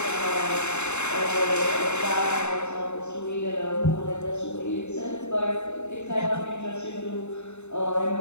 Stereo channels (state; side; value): late; right; 0.82 ms